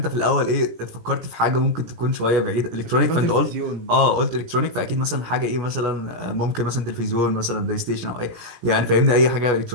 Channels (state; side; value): late; left; 17 ms